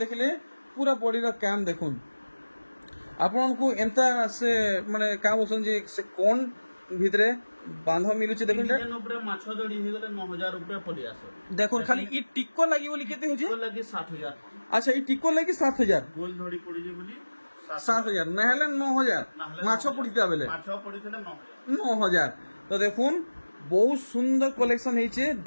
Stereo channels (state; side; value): inverted; both; correlation -1.00